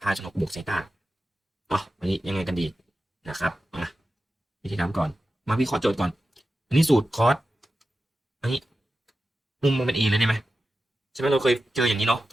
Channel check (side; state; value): both; normal; correlation 0.93